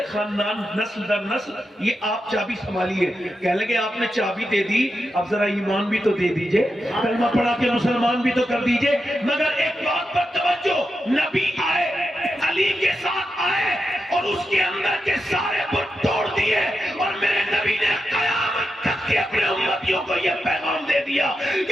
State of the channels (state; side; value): normal; both; correlation 0.88